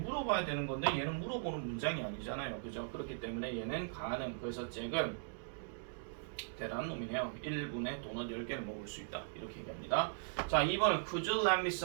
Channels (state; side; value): silent; left; digital silence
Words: 되는 건데 얘는 물어보는 문장이 아니잖아요. 그죠? 그렇기 때문에 얘는 가능. 그래서 잭은 대단한 놈이네요. 1분에 도넛 10개를 먹을 수 있다. 이렇게 얘기합니다. 자, 2번은 Could you lend me